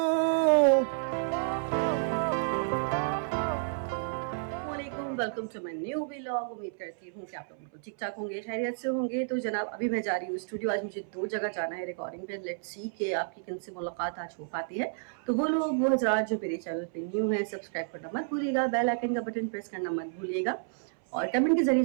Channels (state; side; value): silent; left; 57 dB below the other